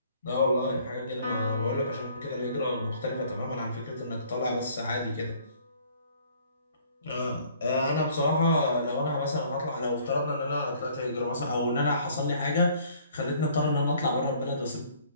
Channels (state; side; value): inverted; both; correlation -0.57